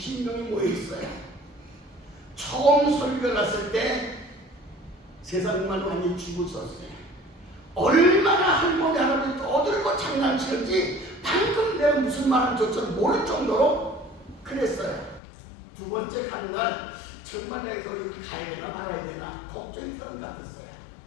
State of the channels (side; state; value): right; drops out; at 15.2 s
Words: 모여 있어요. 처음 설교 갔을 때 세상만 많이 죽었었어요. 얼마나 할머니 할아버지 떠들고 장난치는지 방금 내가 무슨 말하는지조차 모를 정도로 그랬어요. 두 번째 가는 날 정말 내가 거기 가야 되나 말아야 되나 걱정이 되는 것 같았어요.